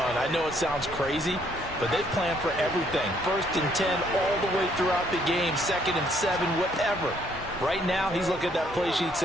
I know it sounds crazy, but they plan for everything. 1st and 10 all the way throughout the game, 2nd and 7, whatever. Right now, he's looking at that play sheet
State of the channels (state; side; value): normal; both; correlation 0.67